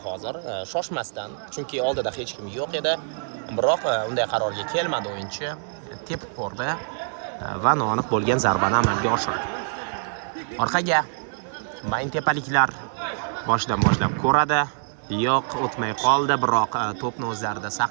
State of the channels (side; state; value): left; silent; digital silence